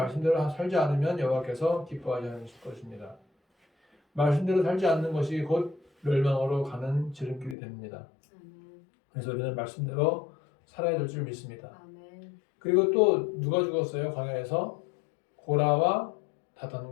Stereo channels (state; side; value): drops out; right; at 7.6 s